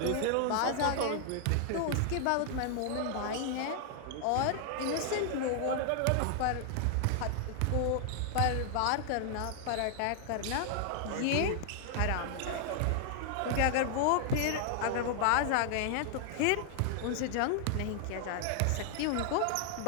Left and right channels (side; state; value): both; different; correlation 0.00